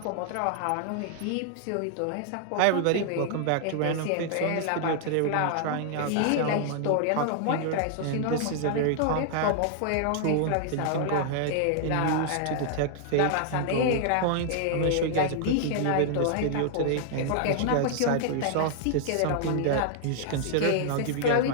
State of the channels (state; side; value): different; both; correlation -0.01